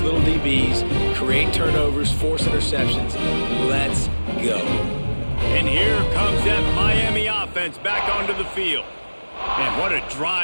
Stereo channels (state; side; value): inverted; both; correlation -1.00